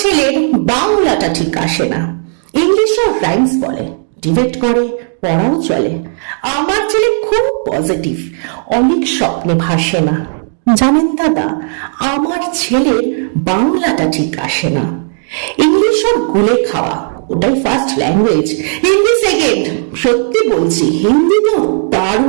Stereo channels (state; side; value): silent; left; 59 dB below the other